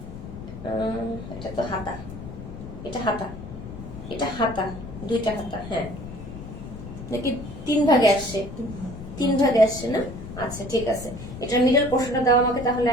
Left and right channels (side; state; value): left; noise; rumble, 12 dB below the sound